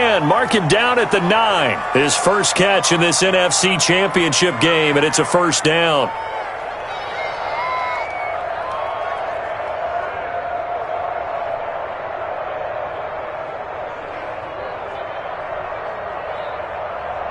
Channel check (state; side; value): identical; both; correlation 1.00